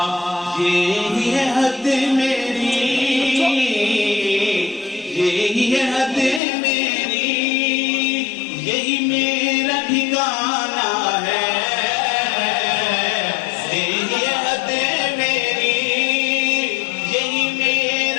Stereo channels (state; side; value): drops out; right; at 6.4 s